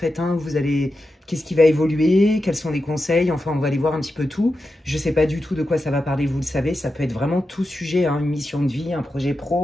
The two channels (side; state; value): both; normal; correlation 0.90